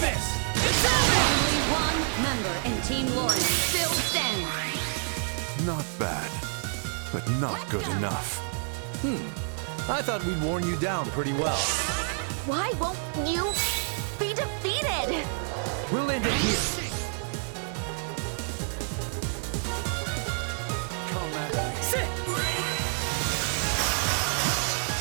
It's over! Only one member in Team Lauren still stands. Not bad, but not good enough. I thought we'd worn you down pretty well. Why won't you be defeated? We'll end it here. Sit!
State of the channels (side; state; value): left; silent; 59 dB below the other